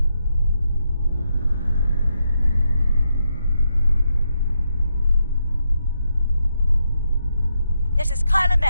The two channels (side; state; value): both; inverted; correlation -0.82